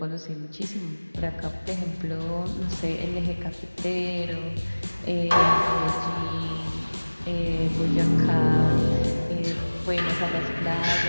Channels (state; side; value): inverted; both; correlation -1.00